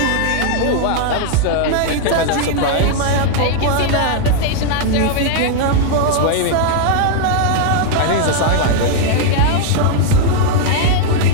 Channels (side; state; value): both; different; correlation 0.00